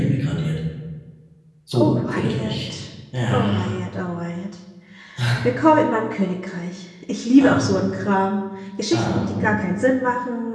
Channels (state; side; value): identical; both; correlation 1.00